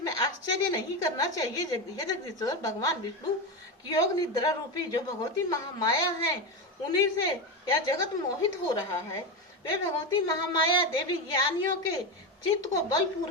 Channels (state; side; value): normal; both; correlation 0.15